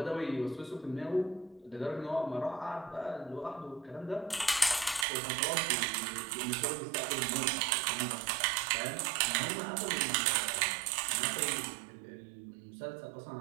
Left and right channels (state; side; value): drops out; left; at 5.1 s